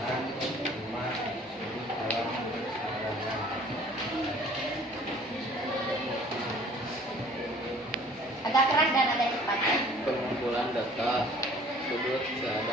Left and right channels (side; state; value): both; normal; correlation 0.52